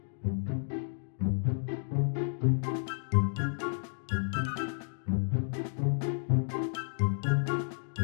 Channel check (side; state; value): right; silent; digital silence